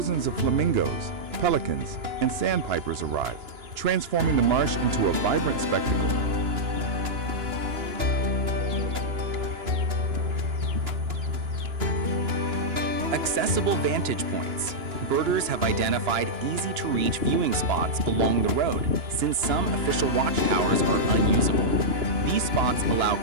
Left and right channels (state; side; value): late; left; 2.9 ms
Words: of flamingos, pelicans, and sandpipers arrive, transforming the marsh into a vibrant spectacle. Accessible vantage points. Birders have identified easy-to-reach viewing spots along the road, since some official watchtowers are unusable. These spots allow